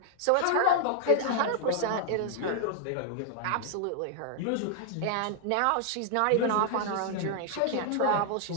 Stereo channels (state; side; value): different; both; correlation 0.00